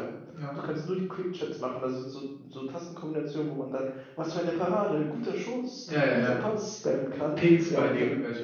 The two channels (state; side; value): identical; both; correlation 1.00